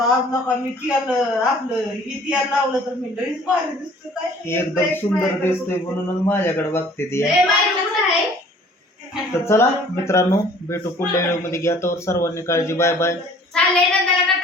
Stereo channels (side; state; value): both; normal; correlation 0.53